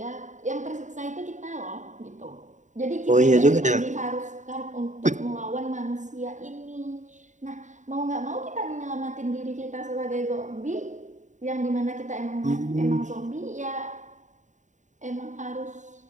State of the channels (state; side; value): late; left; 0.36 ms